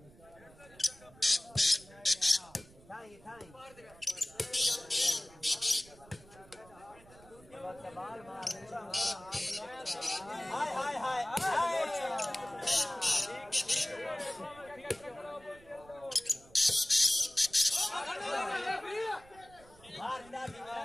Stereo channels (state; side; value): noise; right; rumble, 24 dB below the sound